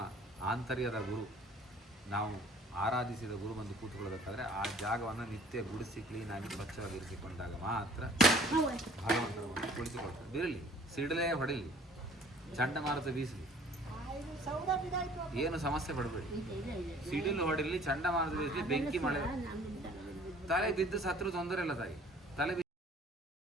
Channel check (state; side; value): normal; both; correlation 0.53